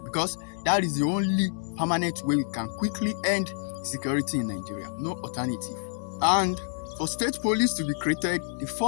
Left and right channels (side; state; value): right; silent; digital silence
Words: because that is the only permanent way we can quickly end security in Nigeria. No alternative. And for state police to be created, the